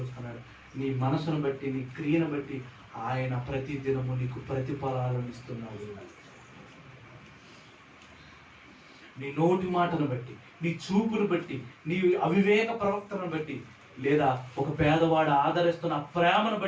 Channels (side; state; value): both; identical; correlation 1.00